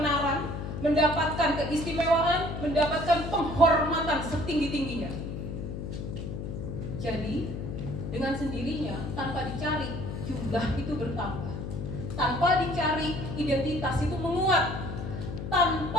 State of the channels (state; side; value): noise; left; hum, 6 dB below the sound